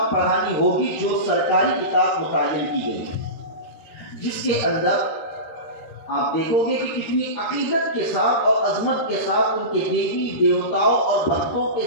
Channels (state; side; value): late; right; 13 ms